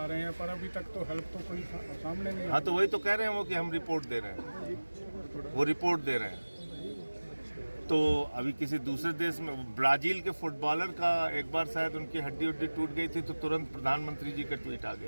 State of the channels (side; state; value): both; inverted; correlation -1.00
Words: रहे हैं, पर अभी तक तो हेल्प तो कोई सामने नहीं। हाँ, तो वही तो कह रहे हैं वो कि हम रिपोर्ट दे रहे हैं, वो रिपोर्ट दे रहे हैं। तो अभी किसी दूसरे देश में, ब्राजील के फुटबॉलर का एक बार शायद उनकी हड्डी उड्डी टूट गई थी तो तुरंत प्रधानमंत्री जी का ट्वीट आ